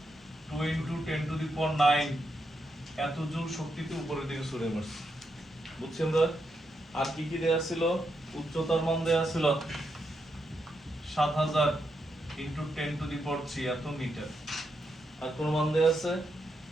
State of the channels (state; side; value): normal; both; correlation 0.83